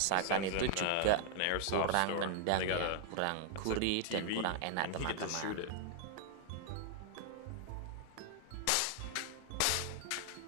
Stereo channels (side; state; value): both; different; correlation 0.00